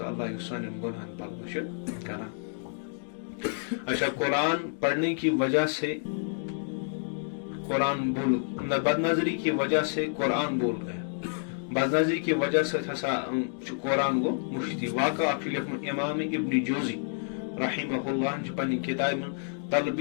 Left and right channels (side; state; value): right; silent; digital silence